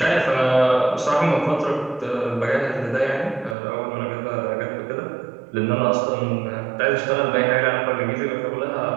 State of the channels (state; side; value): drops out; left; at 3.6 s